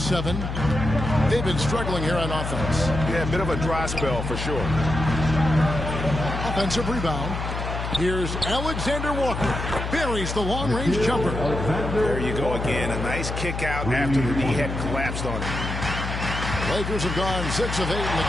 They've been struggling here on offense. Yeah, a bit of a dry spell for sure. Offensive rebound. Here's Alexander Walker. Buries the long-range jumper. There you go again. A nice kick out after the knee had collapsed on him. Lakers have gone 6 of 8 in the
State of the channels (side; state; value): left; noise; hum, 4 dB below the sound